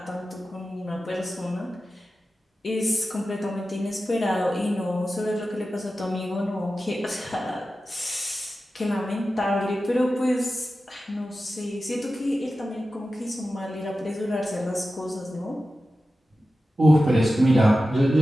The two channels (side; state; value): both; normal; correlation 0.93